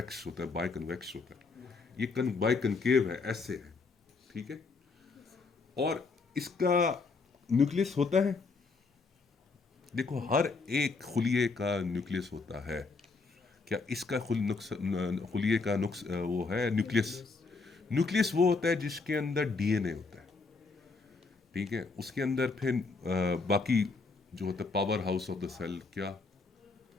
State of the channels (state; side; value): quieter; right; 4.2 dB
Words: होता है, बाय कन्वेक्स होता है। ये बाय कनकेव है, ऐसे है, ठीक है। और इसका न्यूक्लियस होता है, देखो हर एक खुलिये का न्यूक्लियस होता है। क्या इसका खुलिये का वो है न्यूक्लियस? न्यूक्लियस वो होता है जिसके अंदर डीएनए होता है, ठीक है। उसके अंदर फिर बाकी जो होता है power house of the cell. क्या